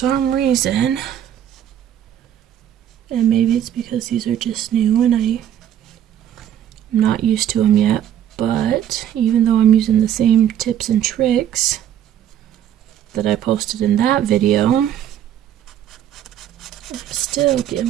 reason, and maybe it's because these are just new and I'm not used to them yet, but even though I'm using the same tips and tricks that I posted in that video, I'm still getting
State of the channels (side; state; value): left; quieter; 10.5 dB